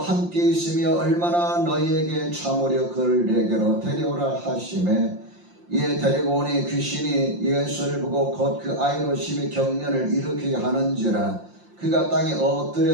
함께 있으며 얼마나 너희에게 참으려 그를 내게로 데려오라 하시매, 이에 데리고 오니 귀신이 예수를 보고 곧 그 아이로 심히 경련을 일으키게 하는지라. 그가 땅에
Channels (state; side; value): late; left; 5.7 ms